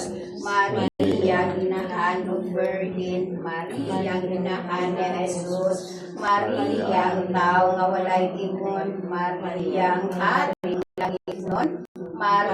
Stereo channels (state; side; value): identical; both; correlation 1.00